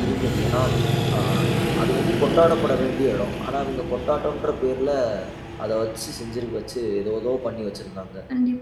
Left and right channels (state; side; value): identical; both; correlation 1.00